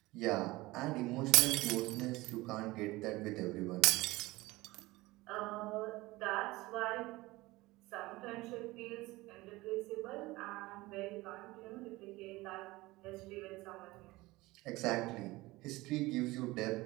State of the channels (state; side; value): quieter; left; 20.3 dB